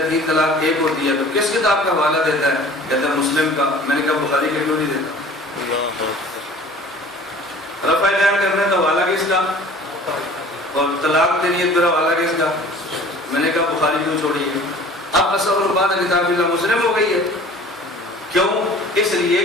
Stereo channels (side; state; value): both; normal; correlation 0.47